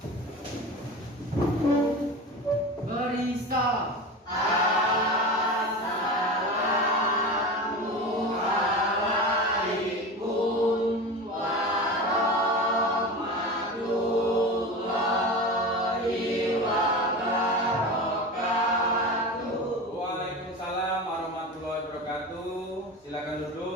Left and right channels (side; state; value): both; normal; correlation 0.29